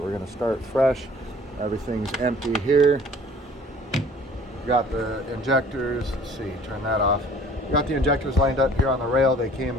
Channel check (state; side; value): normal; both; correlation 0.51